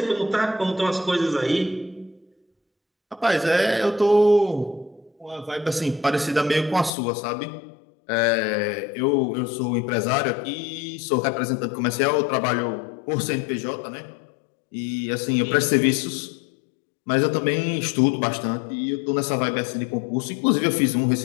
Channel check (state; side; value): drops out; right; at 6.9 s